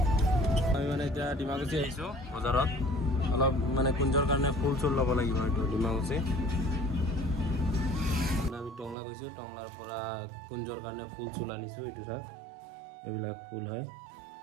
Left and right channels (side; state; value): left; drops out; at 9.0 s